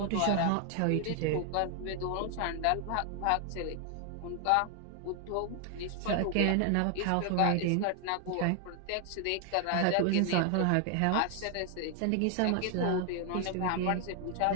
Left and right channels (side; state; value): both; different; correlation 0.00